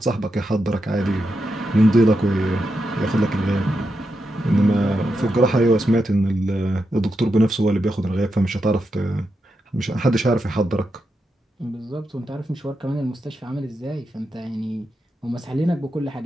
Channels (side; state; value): both; normal; correlation 0.86